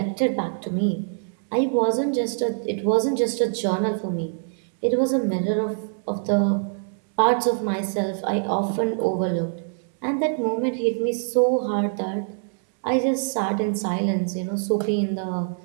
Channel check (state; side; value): silent; left; digital silence